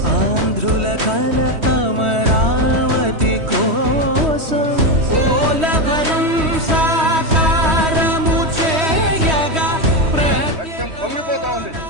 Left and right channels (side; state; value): left; late; 3.1 ms